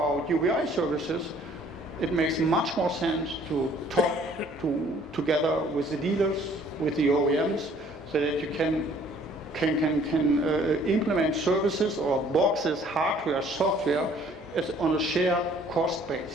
UBI services, it makes much more sense to talk together with the dealers, with the OEMs, so that you can implement services or boxes, hardware, software, as on a shared cost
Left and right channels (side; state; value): both; normal; correlation 0.58